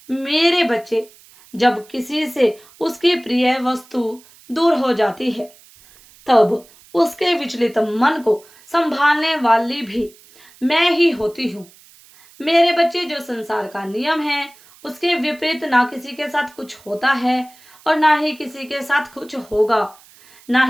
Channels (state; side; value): noise; right; hiss, 26 dB below the sound